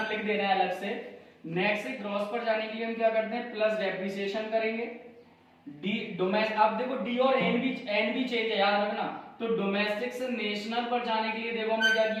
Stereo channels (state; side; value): identical; both; correlation 1.00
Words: लिख दे रहे हैं अलग से, नेट से ग्रॉस पर जाने के लिए हम क्या करते हैं, प्लस डेप्रिसिएशन करेंगे। डी डोमेस्टिक, अब देखो डी और एन भी चेंज है, याद रखना। तो डोमेस्टिक से नेशनल पर जाने के लिए देखो हमने क्या